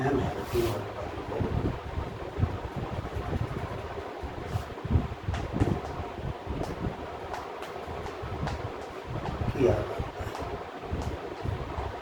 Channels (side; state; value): both; identical; correlation 1.00